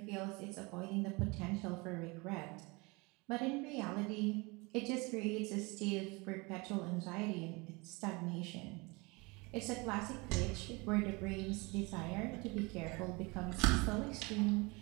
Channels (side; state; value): left; quieter; 26.4 dB